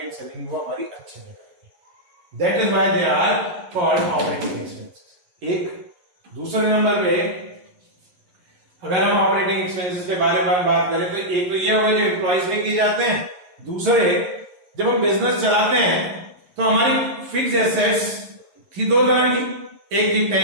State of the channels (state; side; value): late; left; 11 ms